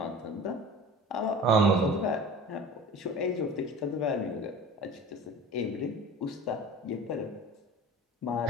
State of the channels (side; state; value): both; normal; correlation 0.38